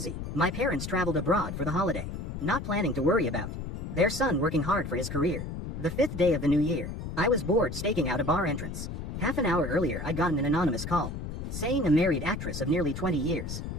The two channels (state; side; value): noise; left; rumble, 6 dB below the sound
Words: My parents traveled abroad for the holiday, not planning to worry about their son working hard for his career. The 5th day of the new year, I was bored staking out a bar entrance. Half an hour earlier I'd gotten an anonymous call, saying a married actress of nearly 20 years